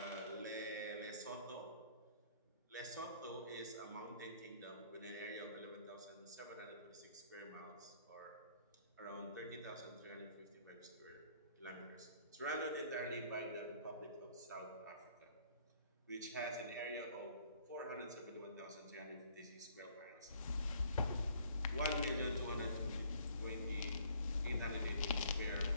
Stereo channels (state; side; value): inverted; both; correlation -0.59